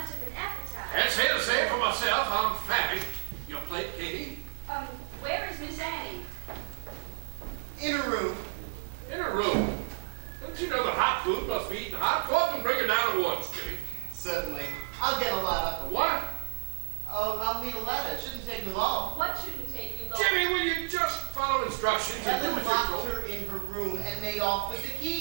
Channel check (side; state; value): left; silent; digital silence